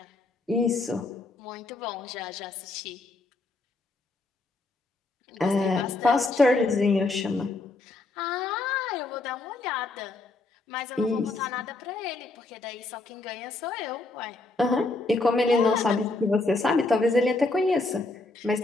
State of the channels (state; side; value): quieter; right; 3.2 dB